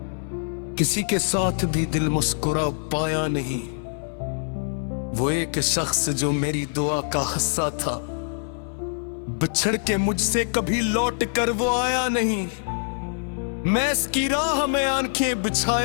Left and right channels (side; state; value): right; silent; 60 dB below the other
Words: किसी के साथ भी दिल मुस्कुरा पाया नहीं। वो एक शख्स जो मेरी दुआ का हिस्सा था, बिछड़ के मुझसे कभी लौट कर वो आया नहीं। मैं इसकी राह में आंखें